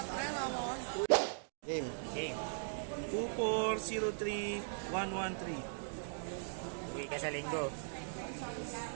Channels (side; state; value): left; silent; digital silence